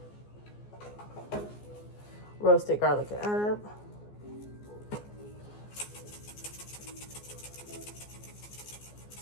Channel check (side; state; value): right; late; 14 ms